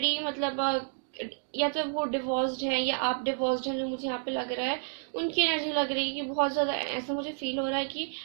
मतलब या तो वो डिवोर्स्ड हैं या आप डिवोर्स्ड हैं, जो मुझे यहाँ पे लग रहा है। उनकी एनर्जी लग रही है कि बहुत ज़्यादा, ऐसा मुझे फील हो रहा है कि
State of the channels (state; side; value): silent; left; digital silence